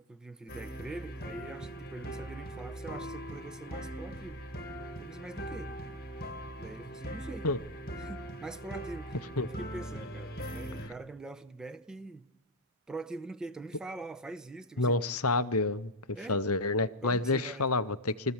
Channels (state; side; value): normal; both; correlation 0.02